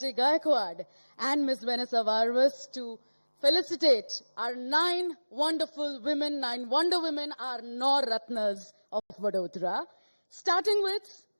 Gaekwad and Ms. Vanessa Varvas to felicitate our 9 wonderful women, 9 wonder women, our Nor Ratnas of Vadodara. Starting with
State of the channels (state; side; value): inverted; both; correlation -1.00